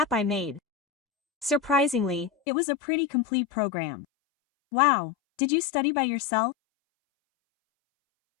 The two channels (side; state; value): right; drops out; at 2.3 s